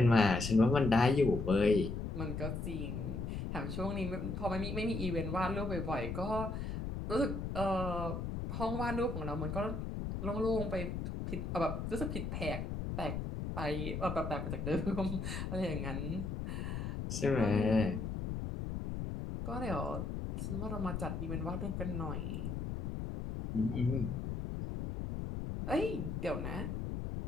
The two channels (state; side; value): noise; left; rumble, 4 dB below the sound